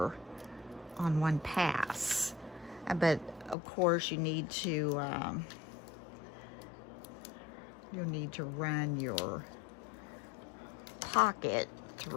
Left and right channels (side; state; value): right; drops out; at 3.6 s